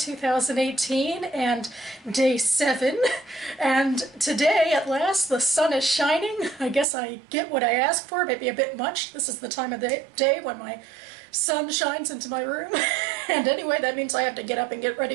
and day 7. And today, at last, the sun is shining. I guess I get what I asked for, maybe a bit much. This is the time of the day when my sun shines into my room. And anyway, that means I have to get up and get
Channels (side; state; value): left; drops out; at 6.9 s